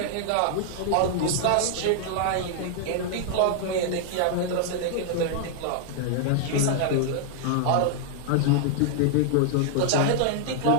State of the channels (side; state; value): both; different; correlation 0.00